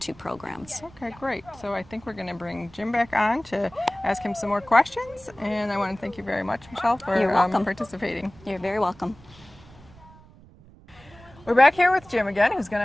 programs. Okay, great. So I think we're going to bring Jim back on to ask him some more questions. And I want to thank you very much, Michelle, for participating. You're very welcome. We're back here with Jim again, who's going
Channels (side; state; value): right; noise; rumble, 23 dB below the sound